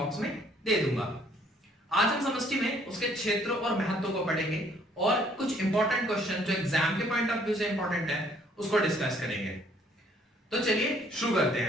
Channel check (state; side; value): normal; both; correlation 0.63